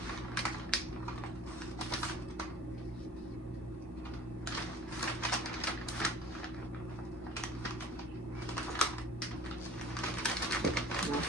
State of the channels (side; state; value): both; normal; correlation 0.46